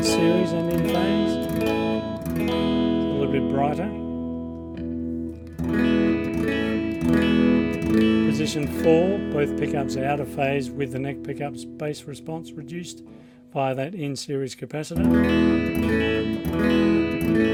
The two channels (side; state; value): both; identical; correlation 1.00